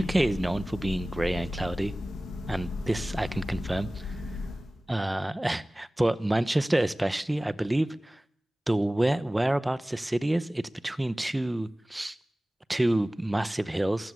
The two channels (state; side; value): normal; both; correlation 0.98